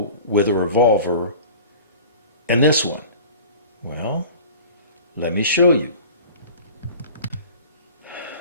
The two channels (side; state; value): both; inverted; correlation -0.41